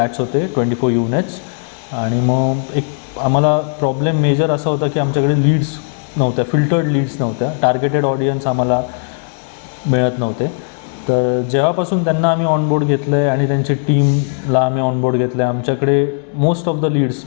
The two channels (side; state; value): right; silent; 61 dB below the other